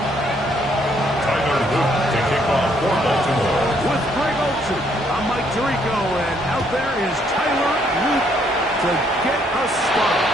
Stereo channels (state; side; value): normal; both; correlation 0.69